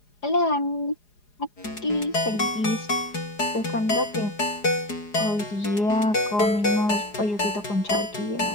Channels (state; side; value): late; right; 4.8 ms